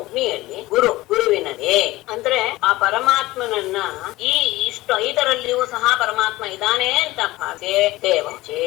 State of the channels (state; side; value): quieter; right; 18.5 dB